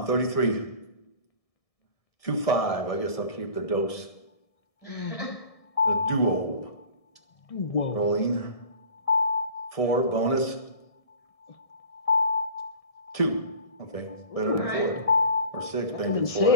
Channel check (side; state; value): right; late; 1.6 ms